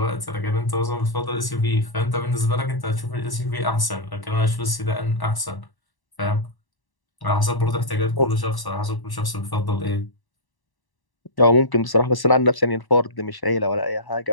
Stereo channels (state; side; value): late; right; 1.1 ms